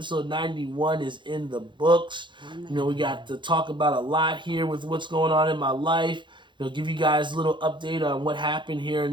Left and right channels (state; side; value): late; left; 0.23 ms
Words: 91 is in the books. We got to talk about a lot here with what's going on in my life. Give you guys a little update on what happened here